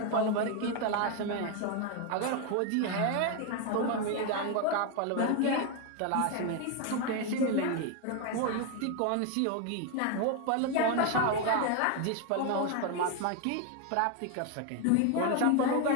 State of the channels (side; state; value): both; different; correlation 0.01